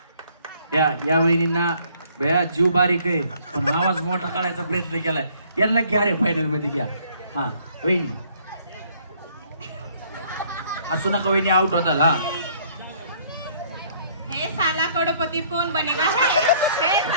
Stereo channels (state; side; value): inverted; both; correlation -0.61